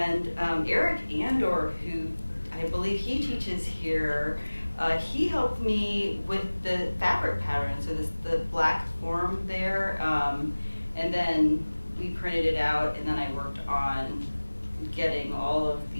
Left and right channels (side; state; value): both; inverted; correlation -1.00